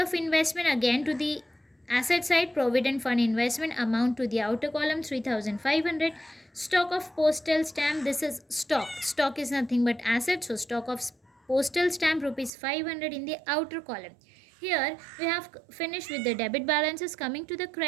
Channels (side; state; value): left; drops out; at 12.5 s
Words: investment again to the asset side. Provident fund investment amount to the outer column 3,500. Stock of postal stamp, this is stock is nothing but asset, so stock of postal stamp rupees 500 in the outer column. Here we have finished with the debit balances. Coming to the